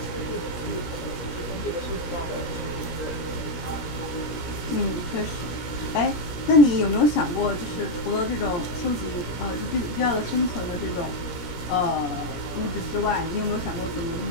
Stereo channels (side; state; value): right; late; 17 ms